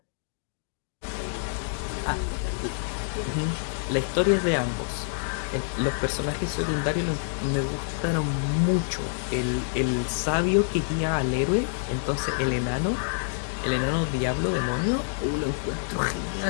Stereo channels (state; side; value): silent; right; digital silence